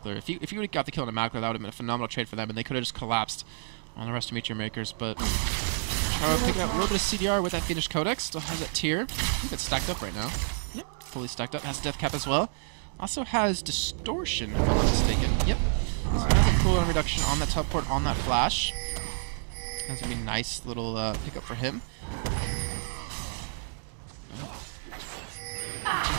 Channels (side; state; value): left; silent; 58 dB below the other